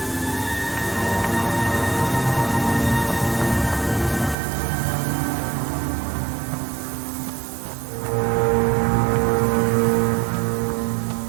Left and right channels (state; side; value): drops out; left; at 4.4 s